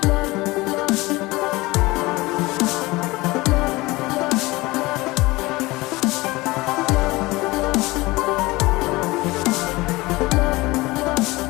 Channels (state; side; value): quieter; right; 21.3 dB